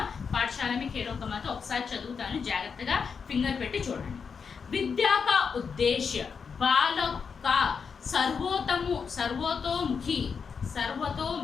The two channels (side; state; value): right; quieter; 5.9 dB